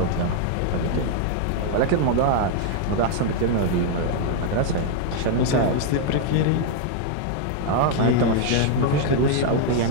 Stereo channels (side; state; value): both; different; correlation 0.00